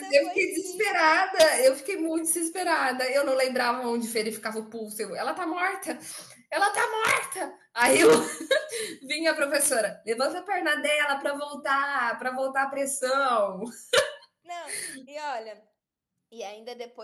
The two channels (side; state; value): both; identical; correlation 1.00